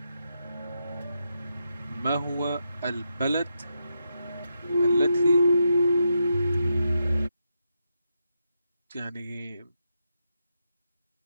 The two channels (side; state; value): both; inverted; correlation -0.84